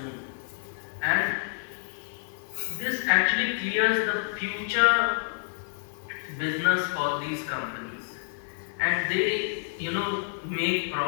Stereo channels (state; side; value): silent; right; digital silence